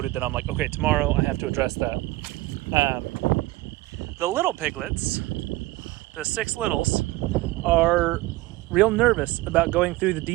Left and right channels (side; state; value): left; quieter; 19.2 dB